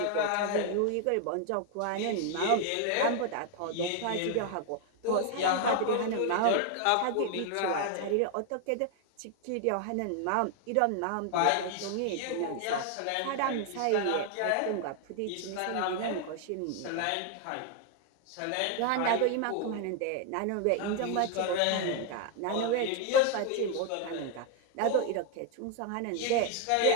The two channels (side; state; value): both; different; correlation 0.01